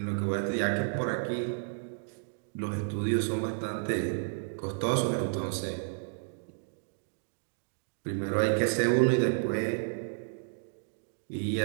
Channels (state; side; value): silent; left; digital silence